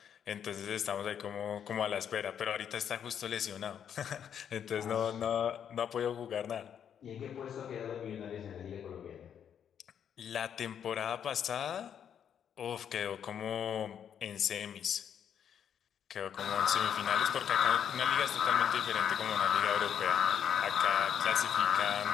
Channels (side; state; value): right; quieter; 8.6 dB